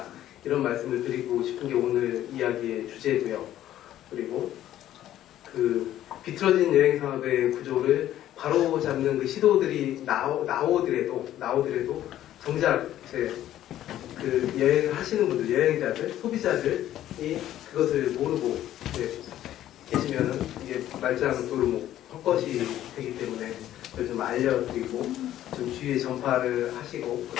이런 말씀을 드리고 싶은 게 오늘 이야기의 주제고요. 그리고 그 비틀어진 여행 산업의 구조를 바로 잡는 그 시도들이 나오더라도 정작 그 여행을 하시는 분들, 여행자들, 소비자들이 그것을 모르고 계시면은 이게 말짱 도루묵 헛것이 되기 때문에 그걸 좀 알려드리고 좀 주위에 전파를 하시고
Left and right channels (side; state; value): right; quieter; 12.6 dB